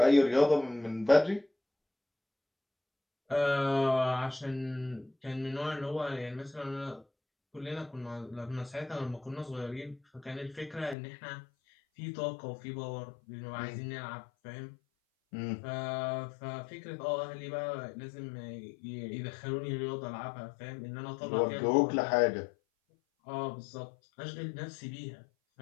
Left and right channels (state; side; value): drops out; right; at 11.0 s